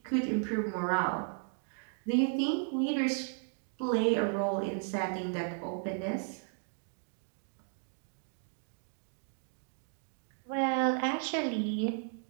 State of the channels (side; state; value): left; silent; 55 dB below the other